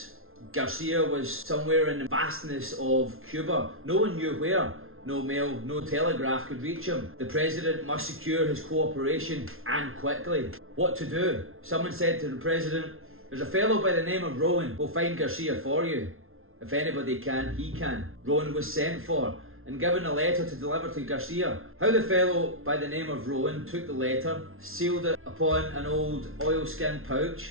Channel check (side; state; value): left; late; 0.61 ms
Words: Garcia was somewhere in the vastness of Cuba. No one knew where. No mail, no telegraph could reach him. The president must secure his cooperation, and quickly. What to do? Someone said to the president, "There's a fellow by the name of Rowan. We'll find Garcia for you. If anybody can, he can." Rowan was sent for and given a letter to deliver to Garcia. How the fellow by the name of Rowan took the letter, sealed it upon an old oilskin